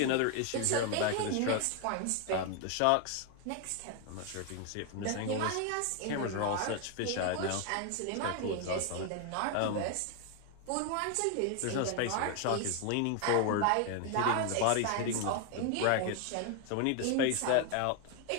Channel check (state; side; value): different; both; correlation 0.01